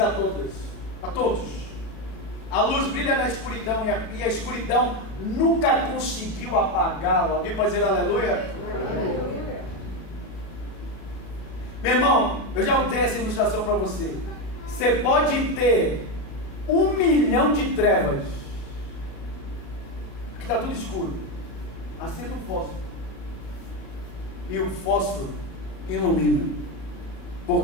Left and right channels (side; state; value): right; late; 37 ms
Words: a todos. A todos. A luz brilha na escuridão, e a escuridão nunca conseguiu apagá-la. Alguém pode dizer aleluia? Aleluia. Meu irmão, eu já dei essa ilustração para você. Você pode ter 1 milhão de trevas. Aqui está tudo escuro. Acenda um fósforo. E o fósforo ilumina.